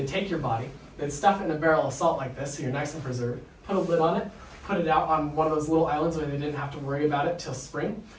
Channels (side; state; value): both; identical; correlation 1.00